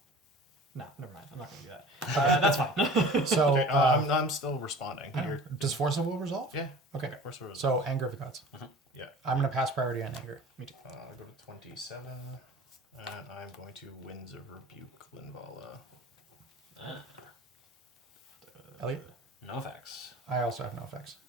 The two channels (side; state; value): both; normal; correlation 0.42